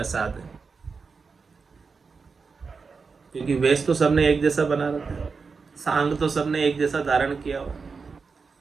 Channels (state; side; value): quieter; left; 4.9 dB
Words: है? क्योंकि वेश तो सबने एक जैसा बना रखा है, सांग तो सबने एक जैसा धारण किया हो,